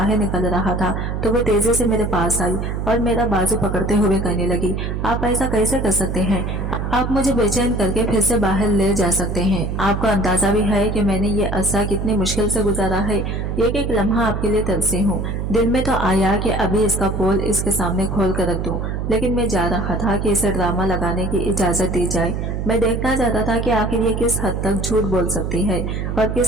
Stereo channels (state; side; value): noise; right; hum, 3 dB below the sound